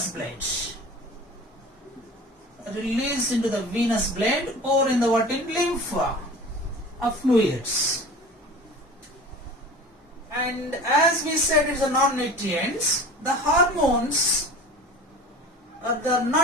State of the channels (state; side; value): normal; both; correlation 0.38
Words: blood. Release into the venous blood or in lymph fluids. And as we said, it's a non-nutrients. The hormones are